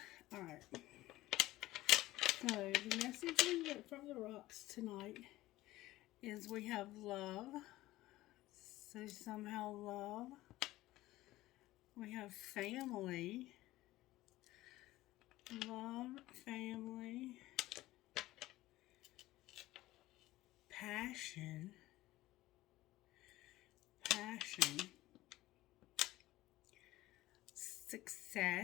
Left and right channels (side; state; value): right; quieter; 17.1 dB